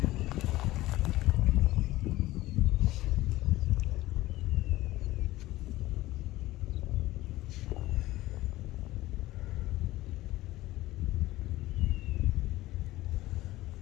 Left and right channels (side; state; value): right; quieter; 17.2 dB